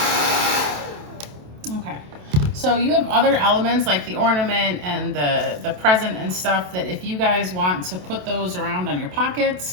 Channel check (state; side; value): late; left; 27 ms